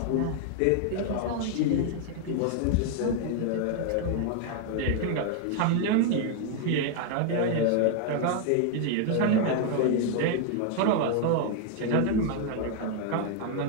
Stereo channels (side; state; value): both; different; correlation 0.00